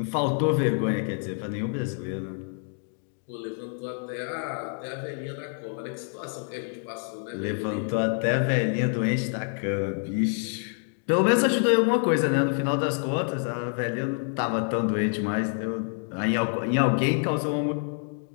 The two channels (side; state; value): right; silent; 55 dB below the other